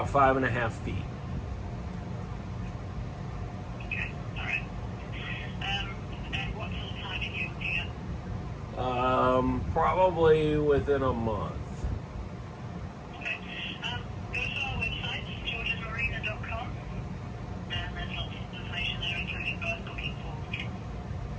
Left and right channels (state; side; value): identical; both; correlation 1.00